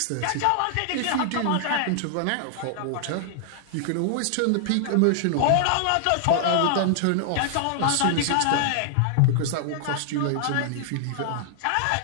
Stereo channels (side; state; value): both; different; correlation -0.01